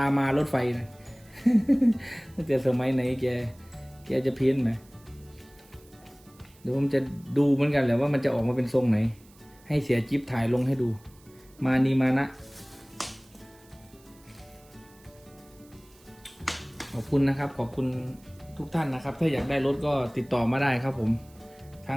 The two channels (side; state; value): right; noise; hiss, 28 dB below the sound